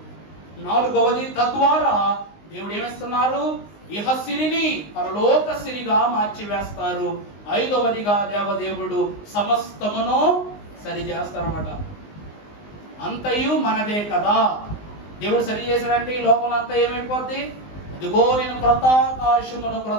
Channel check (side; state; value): right; late; 19 ms